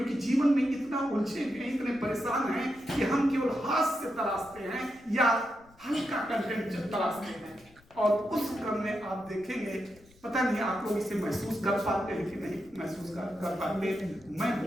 जीवन में इतना उलझे हैं, इतने परेशान हैं कि हम केवल हास्य तलाशते हैं या हल्का कंटेंट तलाशते हैं, और उस क्रम में आप देखेंगे, पता नहीं आप लोग इसे महसूस कर पाते हैं कि नहीं महसूस कर पाते, मैं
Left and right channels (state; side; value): noise; left; rumble, 28 dB below the sound